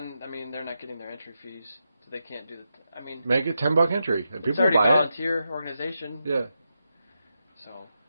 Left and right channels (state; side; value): inverted; both; correlation -0.86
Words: I mean, they're not getting their entry fees, so they can't do that. I mean, make it $10 entry. People it's already buy a volunteer organization. Yeah. So,